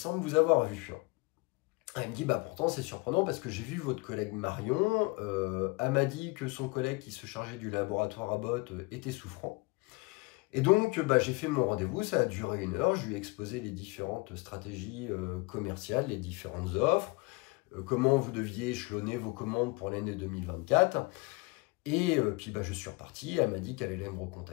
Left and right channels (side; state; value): right; quieter; 26.2 dB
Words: vous avoir vu. Elle me dit, pourtant c'est surprenant parce que j'ai vu votre collègue Marion, elle m'a dit que son collègue qui se chargeait du laboratoire Abbott était souffrant. Et donc j'ai fait mon rendez-vous, ça a duré 1 heure, je lui ai exposé les différentes stratégies commerciales, les différentes offres, comment vous deviez échelonner vos commandes pour l'année 2024. Et puis je suis reparti, elle m'a dit qu'elle allait me